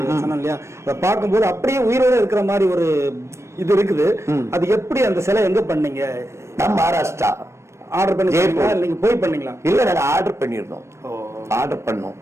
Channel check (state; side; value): late; left; 0.13 ms